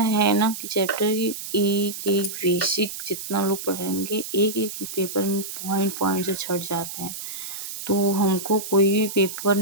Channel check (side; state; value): right; noise; hiss, 8 dB below the sound